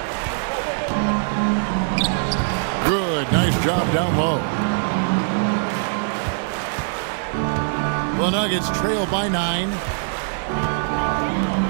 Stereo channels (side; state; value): left; silent; digital silence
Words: Good, nice job down low. The Nuggets trail by 9.